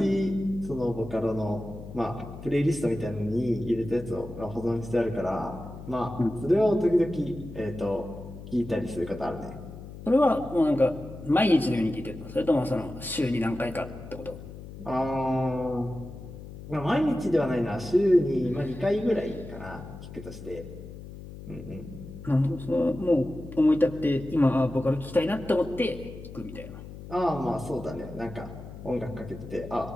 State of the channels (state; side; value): noise; left; hum, 13 dB below the sound